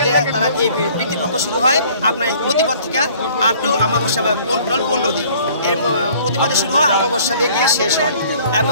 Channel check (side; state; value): both; inverted; correlation -0.55